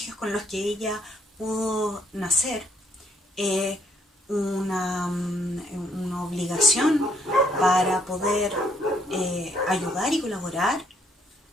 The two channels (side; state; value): both; normal; correlation 0.68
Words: con los que ella pudo nacer, una obligación para poder ayudar y colaborar